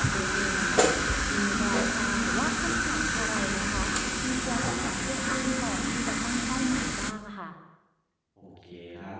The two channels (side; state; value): both; identical; correlation 1.00